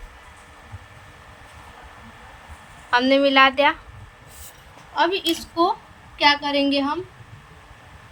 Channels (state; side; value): identical; both; correlation 1.00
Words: हमने मिला दिया। अब इसको क्या करेंगे, हम